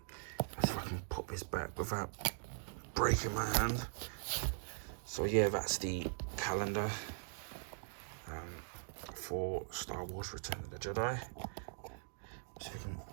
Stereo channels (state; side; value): silent; left; digital silence